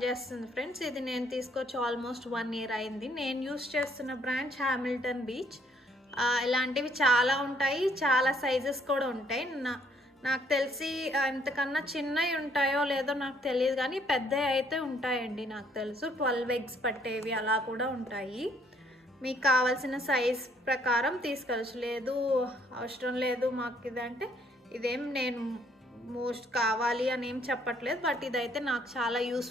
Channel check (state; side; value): normal; both; correlation 0.67